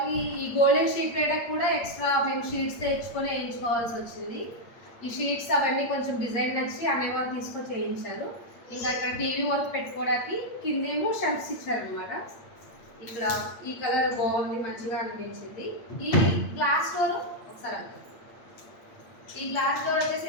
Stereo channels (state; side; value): late; right; 8.7 ms